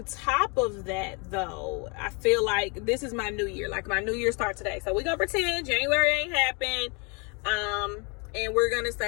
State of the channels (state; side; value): quieter; right; 32.5 dB